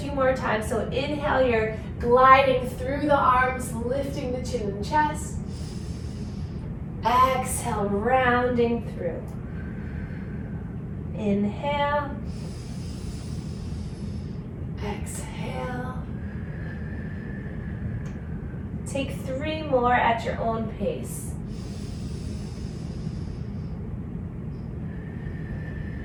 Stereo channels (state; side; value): identical; both; correlation 1.00